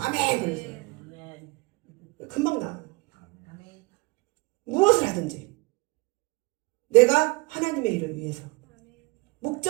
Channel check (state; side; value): quieter; left; 26.1 dB